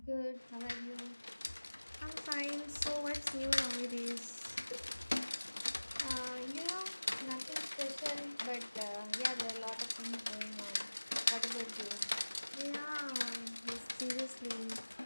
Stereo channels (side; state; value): both; inverted; correlation -1.00